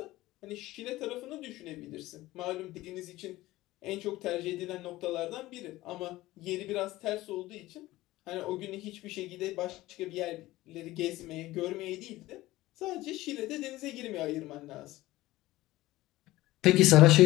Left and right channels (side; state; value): right; quieter; 17.5 dB